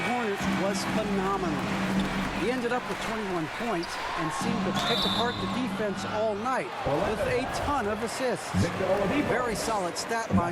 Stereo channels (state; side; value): identical; both; correlation 1.00